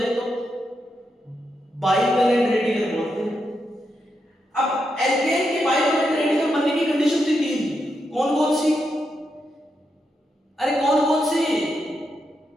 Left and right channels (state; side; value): normal; both; correlation 0.84